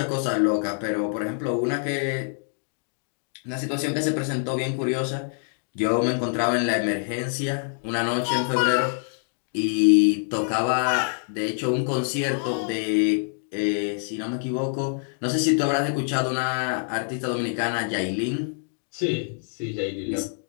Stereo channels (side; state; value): right; silent; 61 dB below the other